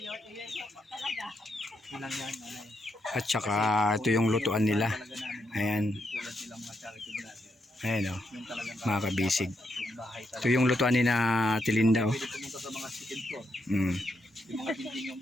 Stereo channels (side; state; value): both; normal; correlation 0.80